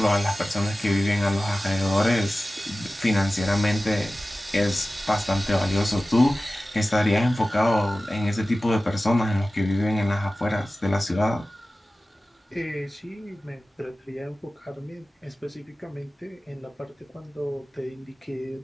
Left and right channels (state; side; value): normal; both; correlation 0.96